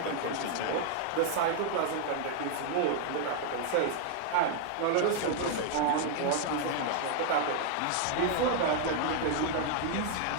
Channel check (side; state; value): both; different; correlation 0.00